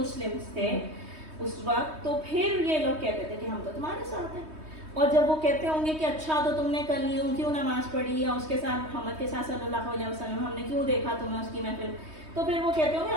تھے اس وقت، تو پھر یہ لوگ کہتے تھے کہ ہم تو تمہارے ساتھ ہیں. اور جب وہ کہتے ہوں گے کہ اچھا تو تم نے کل یوں کیوں نماز پڑھی یا اس کے ساتھ محمد کے ساتھ صلی اللہ علیہ وسلم ہم نے کیوں دیکھا تمہیں اس کی محفل، تو پھر وہ کہتے ہوں گے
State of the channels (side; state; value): left; late; 3.2 ms